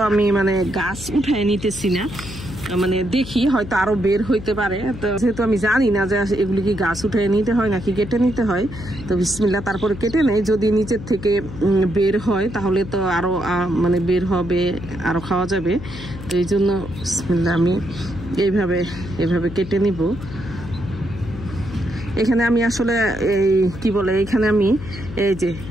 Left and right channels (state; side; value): noise; left; hum, 12 dB below the sound